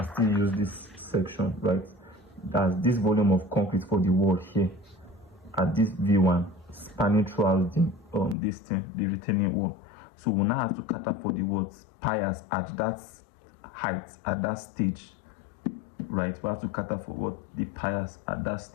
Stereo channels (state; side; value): drops out; right; at 8.3 s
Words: still use this section, right? That's this volume of concrete for the wall here at this V1 spanning throughout the retaining wall. So we now have to cut up for the piers at that height, at that stage, right? We have to cut up for the piers at that